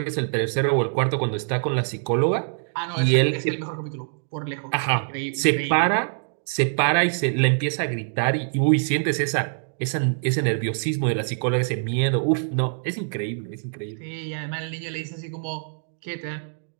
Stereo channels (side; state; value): left; silent; digital silence